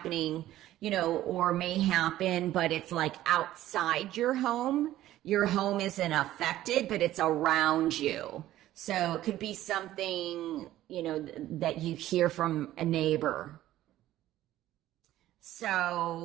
you know, or may happen, but it's like outside your home. Your home isn't affected, but it's around you. So it could be something, you know, that you hear from a neighbor.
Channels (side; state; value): left; quieter; 14.1 dB